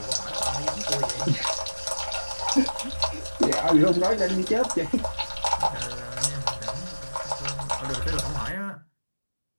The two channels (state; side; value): inverted; both; correlation -1.00